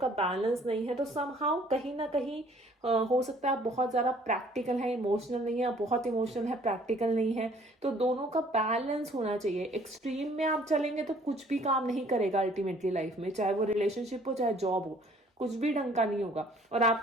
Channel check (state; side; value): normal; both; correlation 0.58